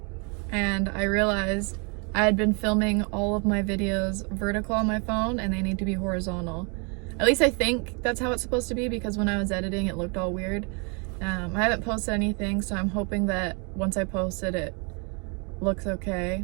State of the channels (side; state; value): left; quieter; 34.5 dB